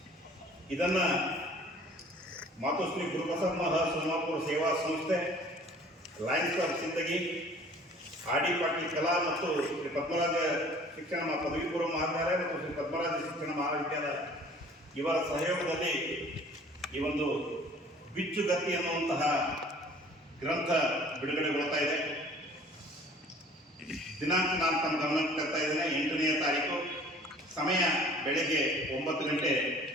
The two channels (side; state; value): both; normal; correlation 0.51